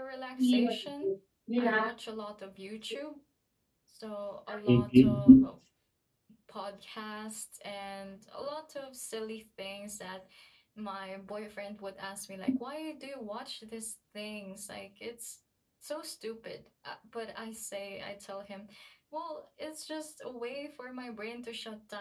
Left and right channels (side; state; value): both; identical; correlation 1.00